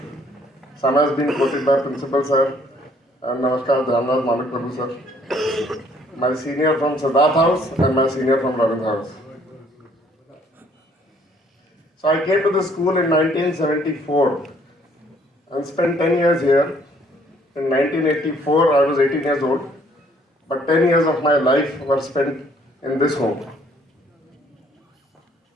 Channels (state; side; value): normal; both; correlation 0.63